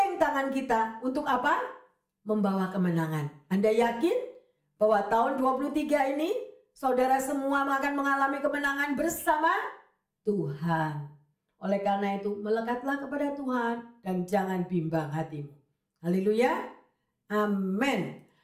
tangan kita untuk apa? Membawa kemenangan. Anda yakin bahwa tahun 23 ini saudara semua akan mengalami kemenangan bersama Tuhan. Oleh karena itu, melekatlah kepada Tuhan dan jangan bimbang hatimu. Haleluya. Amin.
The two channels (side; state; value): both; identical; correlation 1.00